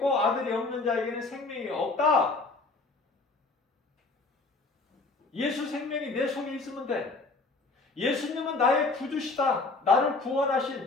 아들이 없는 자에게는 생명이 없다. 예수 생명이 내 속에 있으면 돼. 예수님은 나의 구주시다. 나를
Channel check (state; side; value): quieter; right; 3.6 dB